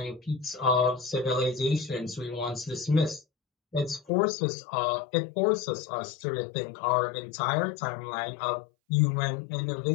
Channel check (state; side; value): drops out; right; at 4.1 s